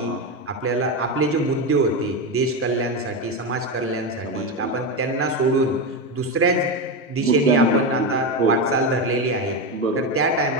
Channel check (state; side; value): normal; both; correlation 0.14